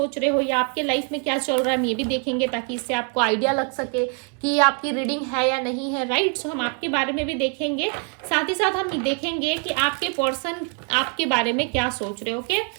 रहे हो या आपके लाइफ में क्या चल रहा है, हम ये भी देखेंगे ताकि इससे आपको आइडिया लग सके कि आपकी रीडिंग है या नहीं है। राइट, सो हम आपके बारे में भी देखेंगे, साथ ही साथ हम देखेंगे कि आपके पर्सन आपके बारे में क्या सोच रहे हैं। ओके,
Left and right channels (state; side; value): quieter; left; 35.8 dB